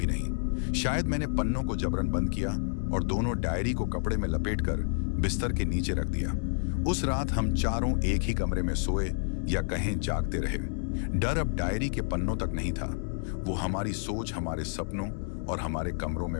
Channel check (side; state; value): right; silent; digital silence